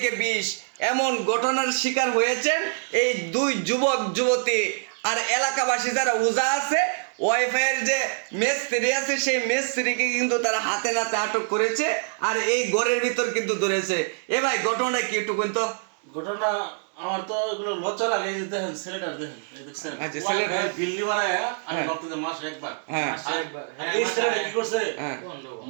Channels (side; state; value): left; silent; 62 dB below the other